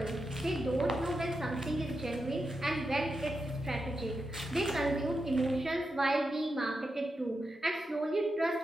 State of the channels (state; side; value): normal; both; correlation 0.87